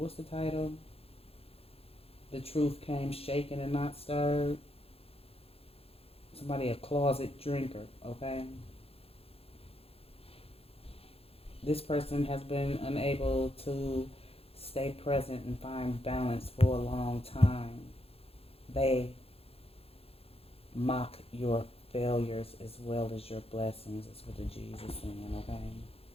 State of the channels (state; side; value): late; right; 0.28 ms